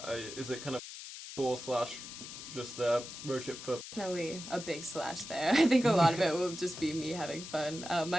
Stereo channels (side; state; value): left; noise; hiss, 11 dB below the sound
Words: Is it kind of tour / just a road trip for? Definitely a big slash there. I think a lot of it will just be me having fun.